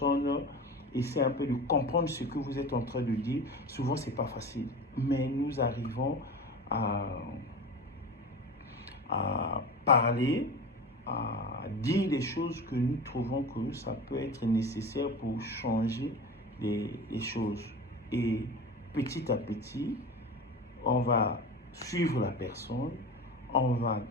essaie un peu de comprendre ce que vous êtes en train de dire. Souvent, c'est pas facile. Mais nous arrivons à parler, à dire des choses que nous trouvons que ça peut être nécessaire pour changer les choses. Et petit à petit, on va suivre la personne, on va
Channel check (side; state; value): both; normal; correlation 0.31